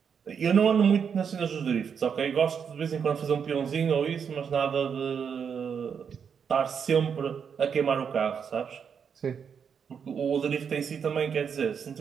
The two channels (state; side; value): quieter; left; 7.0 dB